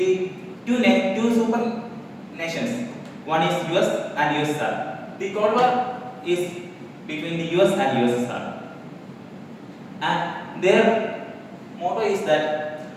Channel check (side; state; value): both; identical; correlation 1.00